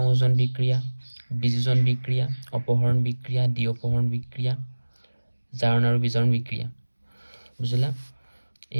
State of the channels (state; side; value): inverted; both; correlation -1.00